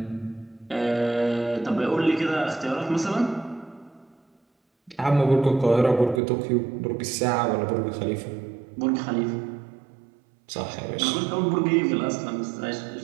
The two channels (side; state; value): left; drops out; at 6.2 s